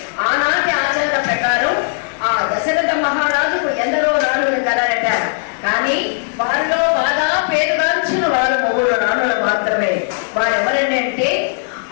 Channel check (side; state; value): right; silent; digital silence